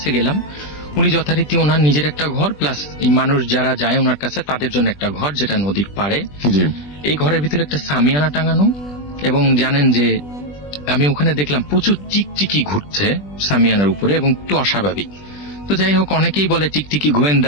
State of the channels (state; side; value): late; right; 20 ms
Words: গেলাম। উনি যথারীতি ওনার নিজের একটা ঘর প্লাস এই মানুষ যারা যায় ওনার কাছে তাদের জন্য একটা ঘর, যেটা নদীর পাড়ে। জি। এই ঘরের ভিতরে একটা সামিয়ানা টাঙানো, এবং জানেন যে আমি ওখানে দেখলাম প্রচুর টিকটিকি ঘুরছে সামিয়ানার উপরে এবং একটু অস্বাভাবিক। তো যাই হোক, অনেকেই বলে টিকটিকি